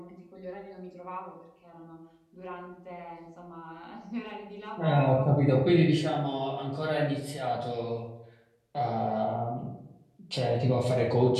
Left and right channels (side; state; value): both; identical; correlation 1.00